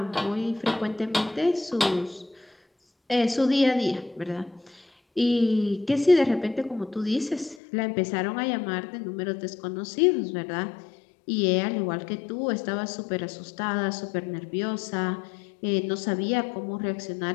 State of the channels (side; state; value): right; drops out; at 7.6 s